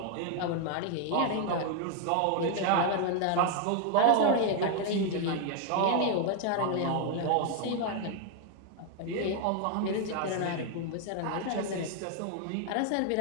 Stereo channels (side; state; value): both; different; correlation 0.00